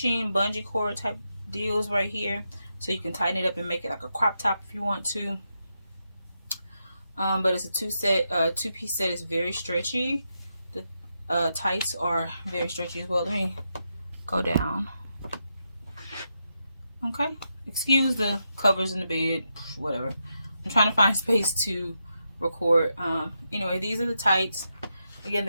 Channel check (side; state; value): both; inverted; correlation -0.85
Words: bungee cord type deals right here, so you can tighten it up and make it like a crop top if you want to. But it's a two-piece set. It's very stretchy. The tights are very stretchy as well. Let me go down. Okay, excuse the covers in the bed, whatever. I'm trying to find space to record. Anyway, these are the tights. Again,